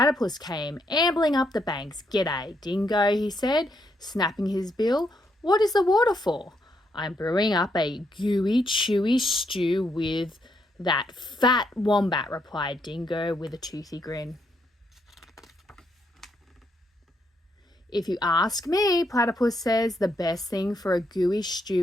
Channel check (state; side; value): normal; both; correlation 0.77